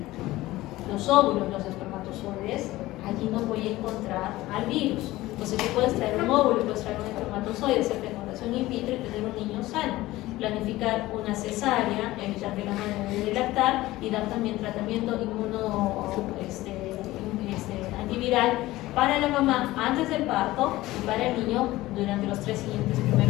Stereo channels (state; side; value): quieter; right; 17.5 dB